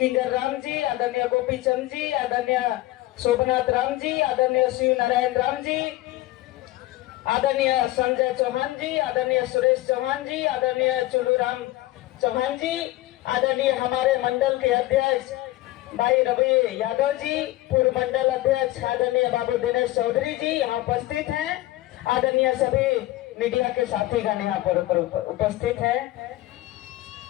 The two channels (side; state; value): right; quieter; 17.2 dB